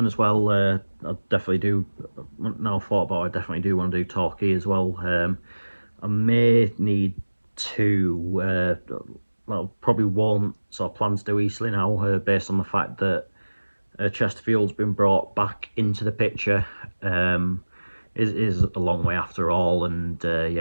as well I definitely do, now thought about it, I definitely do want to do Torquay as well. I may need to well, probably won't sort of plan to do Eastleigh now, based on the fact that Chesterfield's been brought back into the picture. Is a long way after all, and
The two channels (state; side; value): inverted; both; correlation -1.00